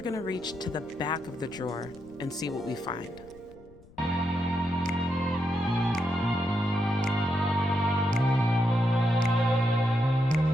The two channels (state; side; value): noise; left; rumble, 24 dB below the sound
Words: going to reach to the back of the drawer and see what we find.